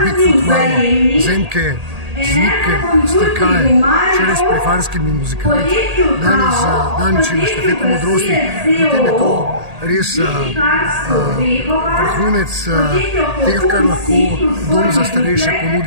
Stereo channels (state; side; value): late; left; 1.8 ms